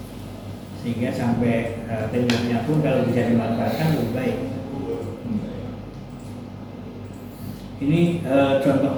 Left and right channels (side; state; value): both; identical; correlation 1.00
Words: Sehingga sampai temboknya pun kalau bisa dimanfaatkan lebih baik. Ini contoh